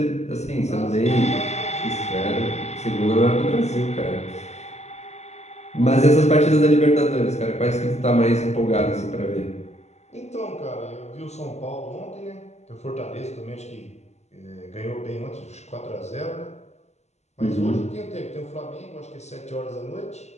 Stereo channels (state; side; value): late; right; 0.32 ms